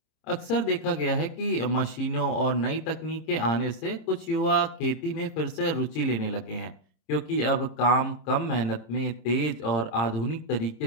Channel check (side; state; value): right; late; 26 ms